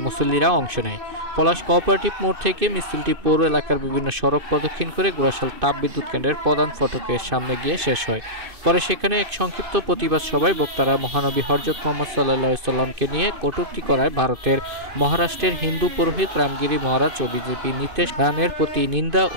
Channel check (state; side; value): late; left; 2.5 ms